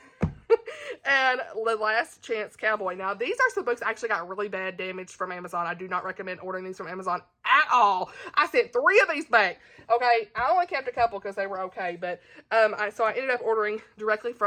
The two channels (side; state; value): both; identical; correlation 1.00